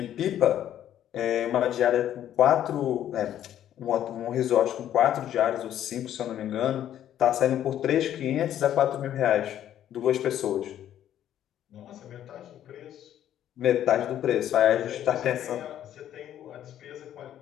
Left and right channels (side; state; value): right; quieter; 11.2 dB